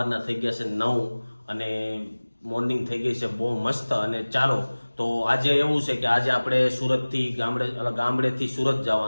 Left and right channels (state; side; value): inverted; both; correlation -1.00